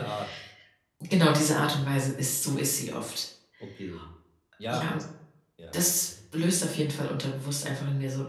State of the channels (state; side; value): identical; both; correlation 1.00